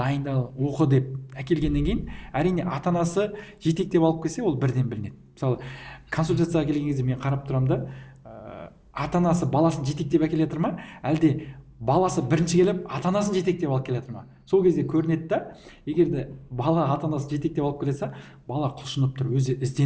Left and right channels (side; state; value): both; identical; correlation 1.00